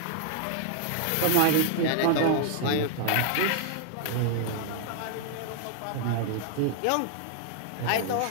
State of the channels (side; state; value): both; different; correlation 0.00